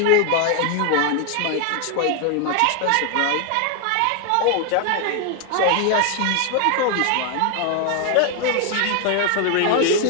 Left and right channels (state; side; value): different; both; correlation 0.00